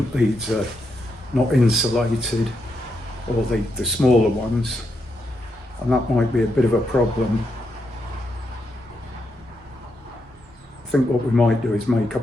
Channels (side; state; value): both; normal; correlation 0.82